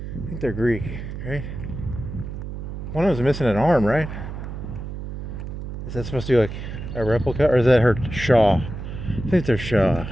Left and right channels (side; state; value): right; noise; hum, 8 dB below the sound